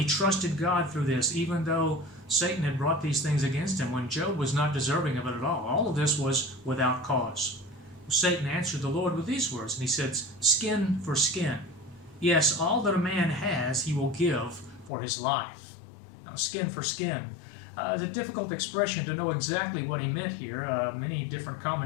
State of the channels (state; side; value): drops out; right; at 14.9 s